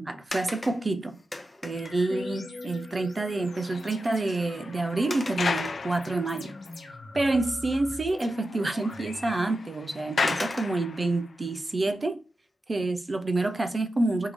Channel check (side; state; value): both; normal; correlation 0.91